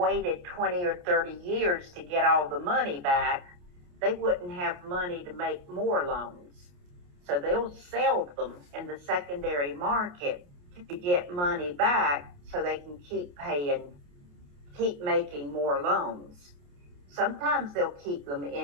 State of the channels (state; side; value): late; left; 28 ms